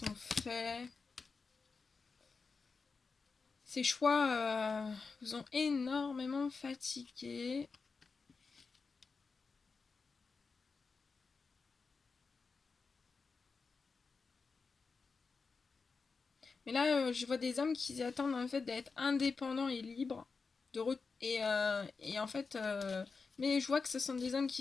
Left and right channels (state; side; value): quieter; right; 4.6 dB